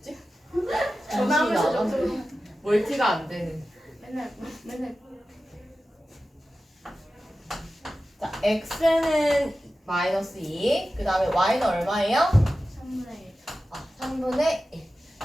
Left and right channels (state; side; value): normal; both; correlation 0.94